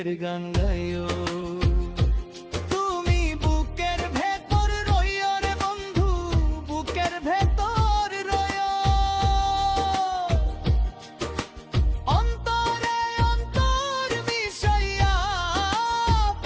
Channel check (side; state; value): both; identical; correlation 1.00